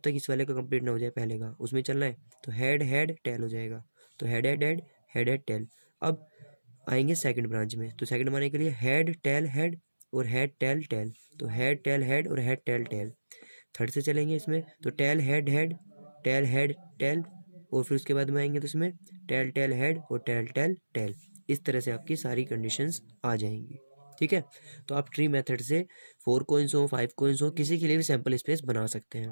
तक इस वाले का कंप्लीट ना हो जाए पहले का, उसमें चलना है, तो हेड हेड टेल हो जाएगा, तो head head head head head tell. अब आएंगे सेकंड ब्रांच में, तो सेकंड बनाने के लिए हेड टेल हेड और हेड टेल टेल, तो हेड टेल हेड और हेड टेल टेल। थर्ड से चलेंगे इसमें, तो tell head head tail head tail, और फिर उसके बाद में आएंगे तो इसमें टेल टेल हेड और टेल टेल टेल। इस तरह से आपकी सारी कंडीशंस आ जाएंगी। ठीक है, तो आप ट्री मेथड से 4 कोइंस हो 5 कोइंस हो किसी के लिए भी सैंपल स्पेस बना सकते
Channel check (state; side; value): inverted; both; correlation -1.00